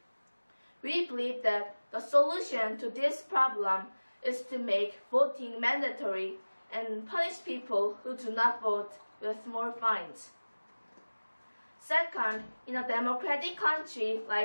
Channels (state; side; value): inverted; both; correlation -1.00